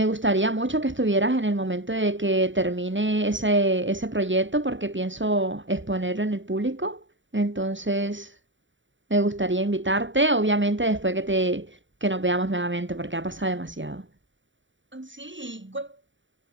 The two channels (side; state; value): left; late; 0.55 ms